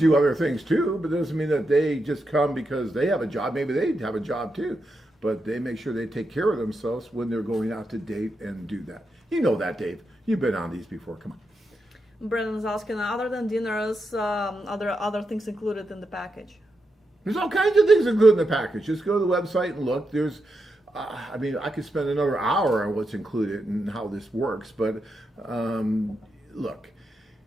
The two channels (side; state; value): both; normal; correlation 0.85